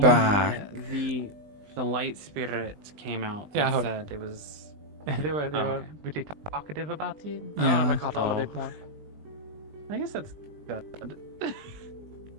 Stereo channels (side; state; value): left; late; 20 ms